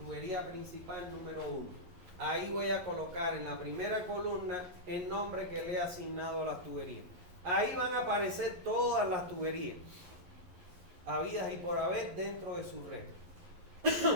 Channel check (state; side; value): late; left; 11 ms